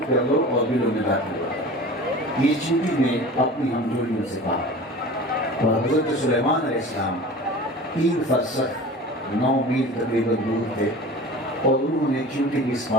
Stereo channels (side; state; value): both; normal; correlation 0.38